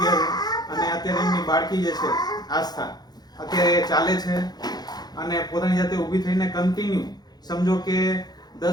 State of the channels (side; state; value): right; late; 0.19 ms